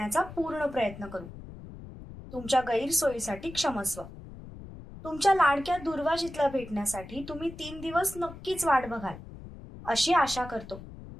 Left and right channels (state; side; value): noise; left; rumble, 14 dB below the sound